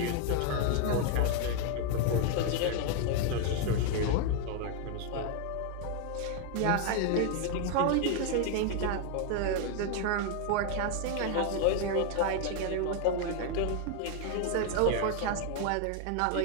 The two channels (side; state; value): both; different; correlation 0.01